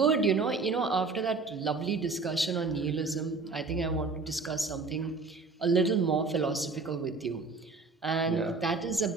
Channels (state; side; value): quieter; left; 4.0 dB